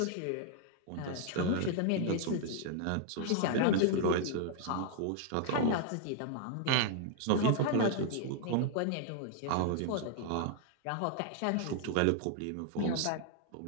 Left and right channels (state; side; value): different; both; correlation 0.00